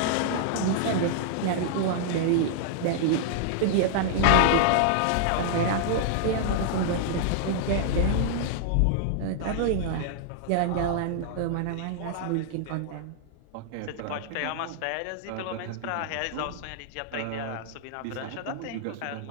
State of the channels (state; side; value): different; both; correlation -0.01